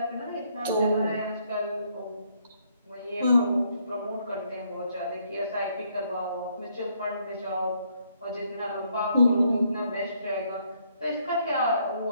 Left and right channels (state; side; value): inverted; both; correlation -0.70